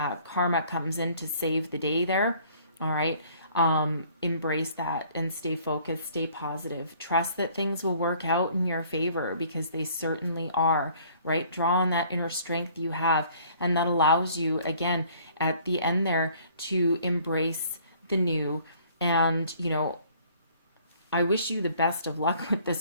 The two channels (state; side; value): inverted; both; correlation -0.56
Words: karma comes in to save the day there, all right? Embrace that and stay focused, stay positive. Trust that things will work out in your favor, because they certainly are, right? Draw on that inner strength you have, and that allows you, again, at the end there, to embrace the new. And, you know, I wish you the best of luck with